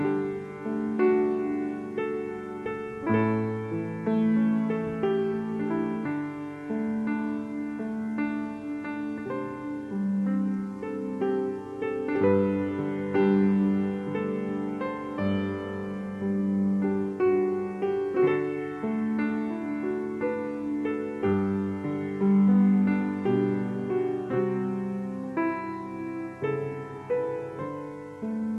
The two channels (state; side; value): identical; both; correlation 1.00